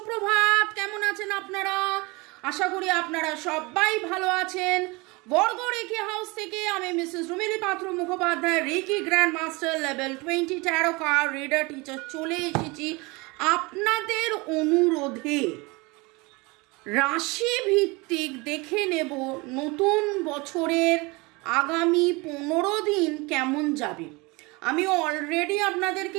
কেমন আছেন আপনারা? আশা করি আপনারা সবাই ভালো আছেন। বর্গর রেকি হাউস থেকে আমি Mrs Rumili Patra Mukhopadhyay, reiki grand master level 20 tarot card reader teacher চলে এসেছি আপনাদের অনুরোধে। রাশি ভিত্তিক দেখে নেব নতুন বছরের আগামী 15 দিন কেমন যাবে। আমি অলরেডি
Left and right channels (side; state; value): left; quieter; 25.5 dB